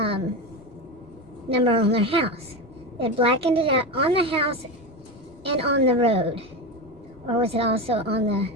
number on their house. They had blackened it out on the house and on the road. Or was it also on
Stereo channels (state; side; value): noise; right; rumble, 29 dB below the sound